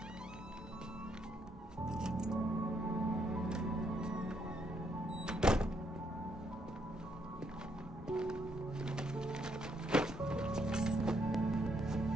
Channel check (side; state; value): both; normal; correlation 0.74